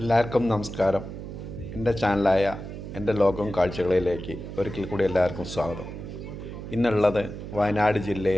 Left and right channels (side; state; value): right; noise; hum, 9 dB below the sound